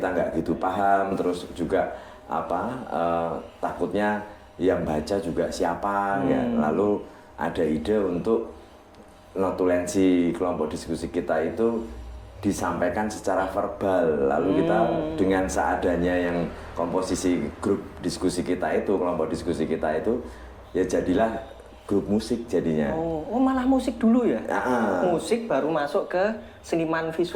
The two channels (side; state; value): both; identical; correlation 1.00